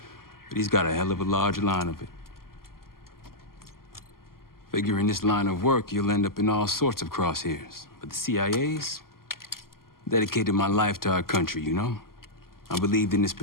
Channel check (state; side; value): late; right; 0.92 ms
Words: But he's got a hell of a large line of it. Figure in this line of work, you'll end up in all sorts of crosshairs. But the CIA's dedicated my life to our country, you know? I believed in its